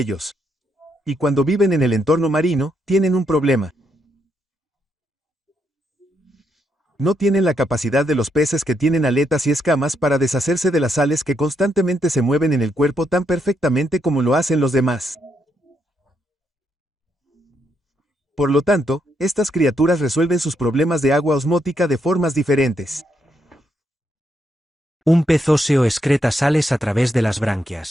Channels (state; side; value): normal; both; correlation 0.78